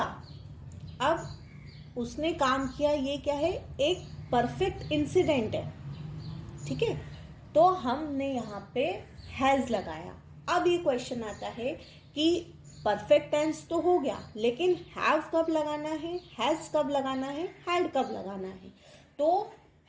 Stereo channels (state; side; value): identical; both; correlation 1.00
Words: अब उसने काम किया, ये क्या है? एक परफेक्ट इंसिडेंट है, ठीक है। तो हमने यहाँ पे हैज लगाया। अब ये क्वेश्चन आता है कि परफेक्ट टेंस तो हो गया, लेकिन हैव कब लगाना है, हैज कब लगाना है, हैड कब लगाना है? तो